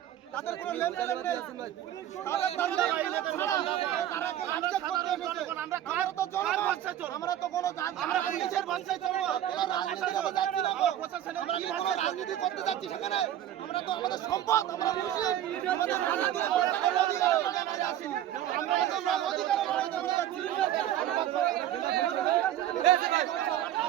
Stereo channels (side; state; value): left; quieter; 11.9 dB